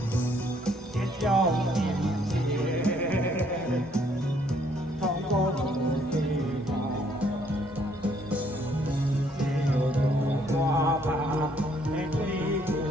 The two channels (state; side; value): normal; both; correlation 0.66